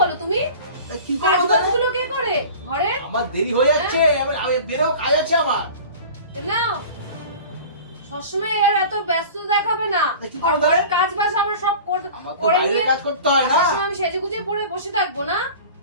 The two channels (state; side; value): inverted; both; correlation -0.39